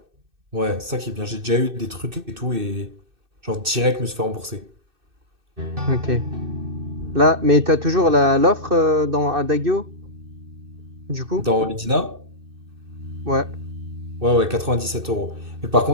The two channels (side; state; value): left; late; 2.6 ms